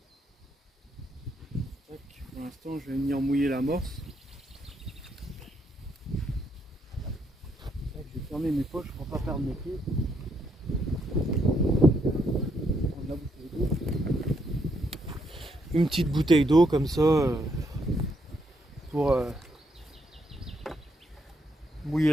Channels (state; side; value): normal; both; correlation 0.75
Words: Tac. Pour l'instant je vais venir mouiller l'amorce. fermer mes poches pour pas perdre mes pieds. La bouteille d'eau. Une petite bouteille d'eau comme ça pour mouiller